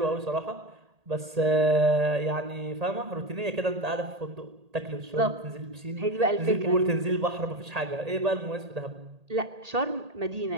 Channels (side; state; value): left; late; 1.8 ms